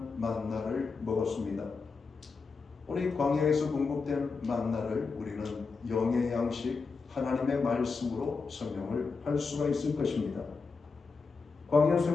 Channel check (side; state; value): right; quieter; 4.7 dB